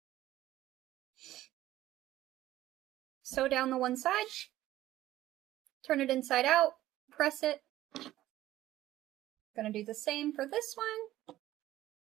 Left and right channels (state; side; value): quieter; left; 14.5 dB